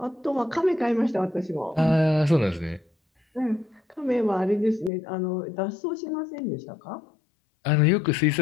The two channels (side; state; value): right; drops out; at 4.9 s